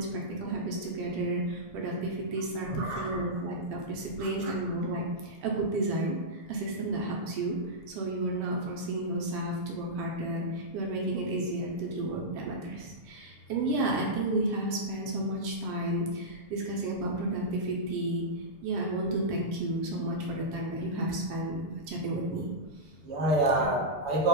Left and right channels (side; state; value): left; late; 7.6 ms